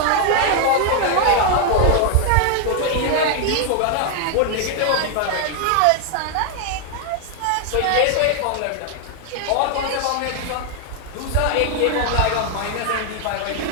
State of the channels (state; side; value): different; both; correlation 0.00